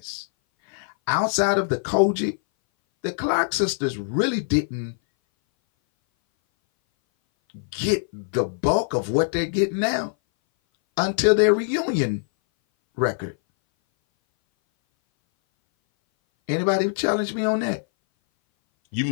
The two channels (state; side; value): silent; right; 59 dB below the other